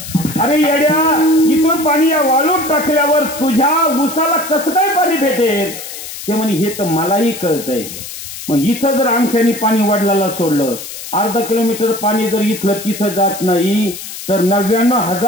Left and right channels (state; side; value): noise; left; hiss, 11 dB below the sound